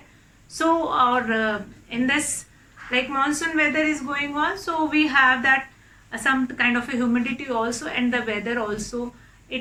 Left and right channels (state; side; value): identical; both; correlation 1.00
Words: So or in this like monsoon weather is going on, so we have that some kind of a humidity also, and the weather also,